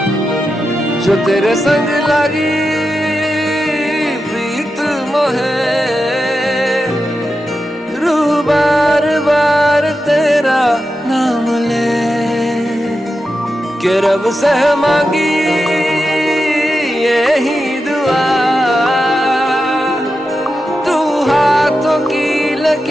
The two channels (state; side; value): normal; both; correlation 0.89